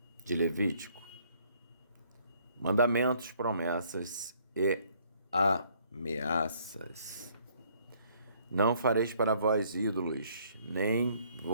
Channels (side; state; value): both; inverted; correlation -0.64